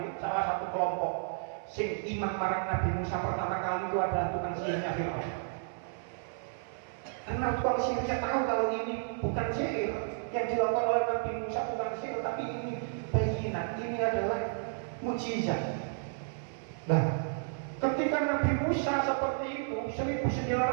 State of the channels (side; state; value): left; silent; 56 dB below the other